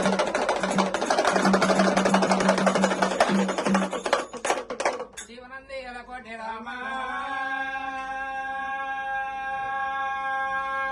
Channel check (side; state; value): both; identical; correlation 1.00